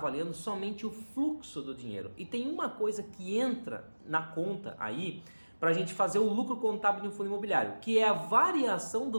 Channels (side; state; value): both; inverted; correlation -1.00